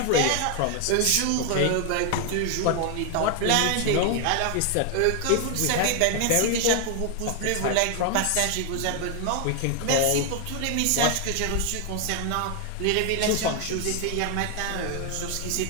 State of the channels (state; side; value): different; both; correlation 0.00